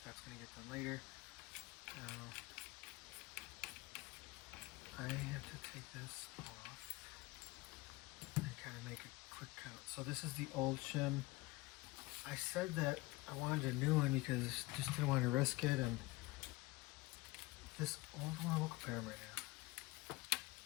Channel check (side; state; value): right; quieter; 21.4 dB